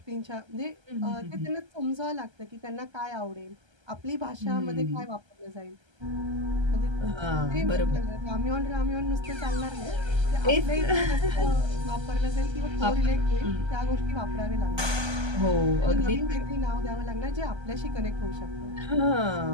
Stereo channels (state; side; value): late; left; 1.3 ms